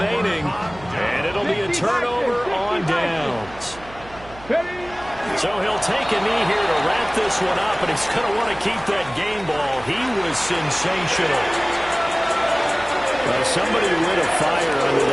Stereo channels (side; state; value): right; noise; hum, 19 dB below the sound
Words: and it'll be a turnover on downs. So he'll take a knee here to wrap this one up, and he's going to want to keep that game ball. He was sensational. Somebody lit a fire under